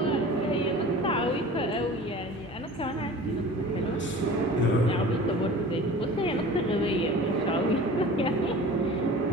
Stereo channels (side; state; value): both; normal; correlation 0.40